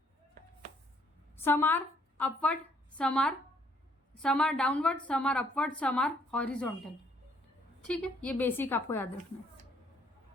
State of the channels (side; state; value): both; normal; correlation 0.66